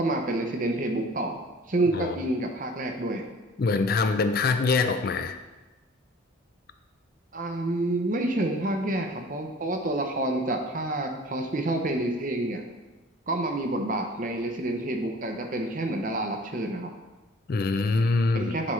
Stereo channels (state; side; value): normal; both; correlation 0.49